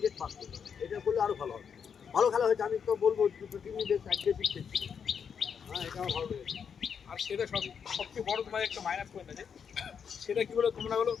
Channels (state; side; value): quieter; right; 7.0 dB